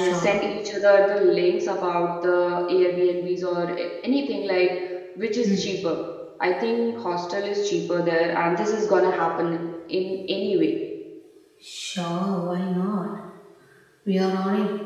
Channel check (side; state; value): both; identical; correlation 1.00